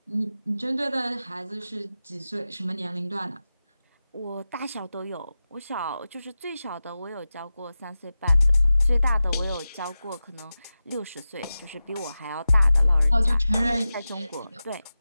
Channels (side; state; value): both; inverted; correlation -0.93